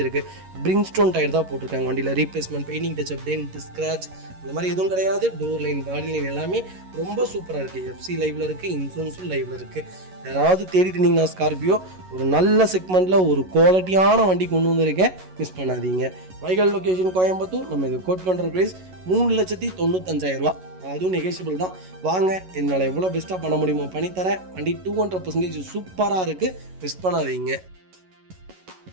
இருக்குது. பிரிங்ஸ்டோன் டயர் தான் போட்டிருக்காங்க. வண்டியில் replacement, painting touch up, dent, scratch இந்த மாதிரி எதுவும் கிடையாது. டோர் லைன், பாடி லைன் எல்லாமே ரொம்ப சூப்பராக இருக்குது. எஃப்சி லைவில் இருக்குது, இன்சூரன்ஸும் லைவில் இருக்குது. யாராவது தேடிட்டு இருந்தீங்கன்னா ஸ்கார்பியோ ஒரு நல்ல செக்மெண்ட்டில் ஒரு குவாலிட்டியான வண்டி கொண்டு வந்திருக்கேன், மிஸ் பண்ணாதீங்க. வைகல் லொக்கேஷன் கோயம்புத்தூர். நம்ம இது கோட் பண்ணுற ப்ரைஸ் 3,95,000 அதுவும் நெகோஷியபிள் தான். வாங்க, என்னால் எவ்வளோ பெஸ்ட்டாக பண்ண முடியுமோ பண்ணித்தரேன். வண்டி 200% சூப்பராக இருக்குது, மிஸ் பண்ணாதீங்க.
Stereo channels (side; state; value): left; late; 11 ms